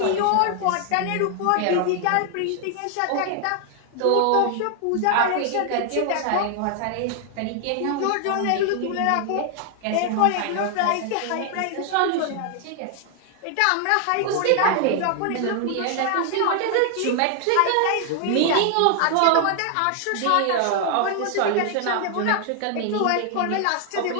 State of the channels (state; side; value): different; both; correlation 0.00